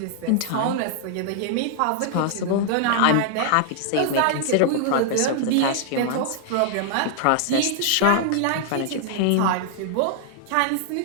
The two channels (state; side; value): different; both; correlation -0.01